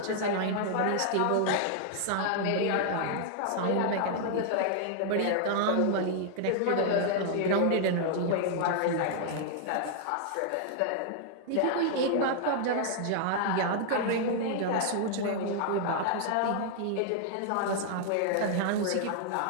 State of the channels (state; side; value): different; both; correlation 0.00